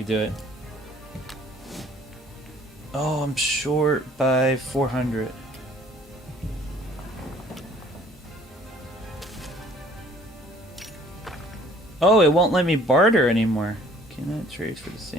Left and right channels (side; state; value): both; normal; correlation 0.55